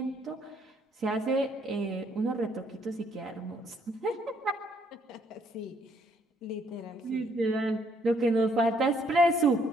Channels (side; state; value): both; normal; correlation 0.68